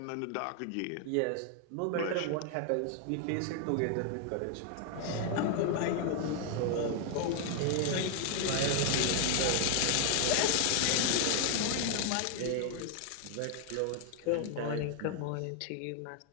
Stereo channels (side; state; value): both; different; correlation 0.00